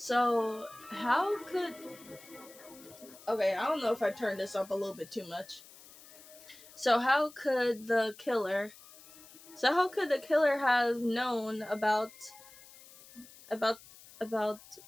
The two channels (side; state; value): left; noise; hiss, 21 dB below the sound